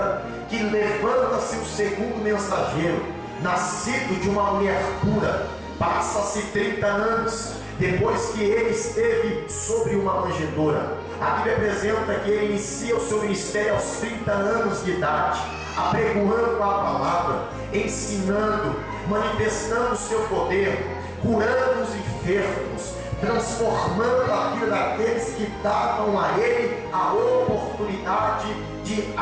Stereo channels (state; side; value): identical; both; correlation 1.00